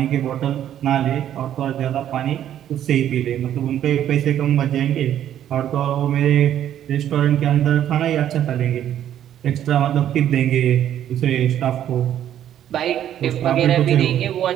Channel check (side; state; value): left; quieter; 10.9 dB